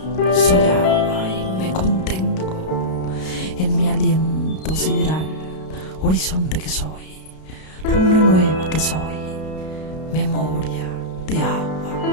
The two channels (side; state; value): right; late; 32 ms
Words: soy agua y me contengo en mi aliento sideral, horizonte que soy, luna nueva que soy, memoria de